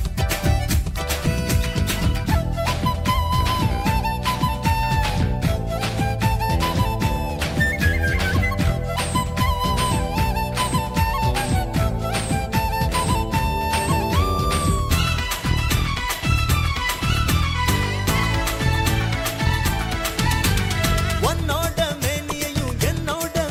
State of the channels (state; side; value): identical; both; correlation 1.00